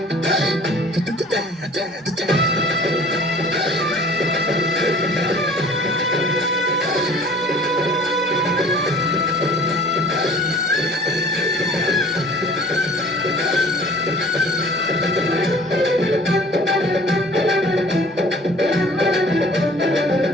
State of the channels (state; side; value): normal; both; correlation 0.48